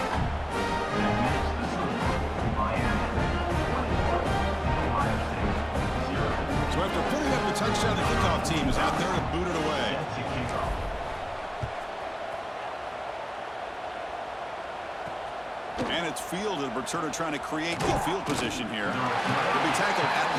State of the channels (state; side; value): identical; both; correlation 1.00